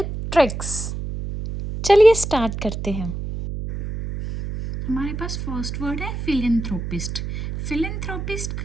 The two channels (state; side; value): noise; right; hum, 6 dB below the sound